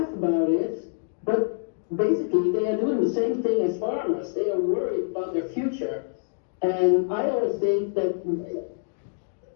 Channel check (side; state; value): right; silent; digital silence